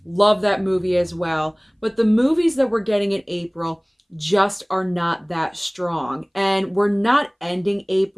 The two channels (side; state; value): both; identical; correlation 1.00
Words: love that movie as well, but the movies that we're getting in April just are not that strong. And we're not ending